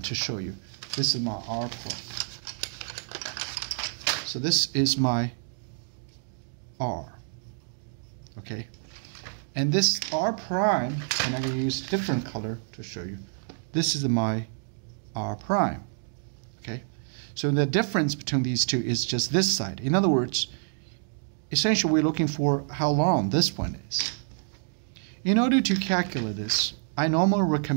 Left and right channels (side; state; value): left; silent; digital silence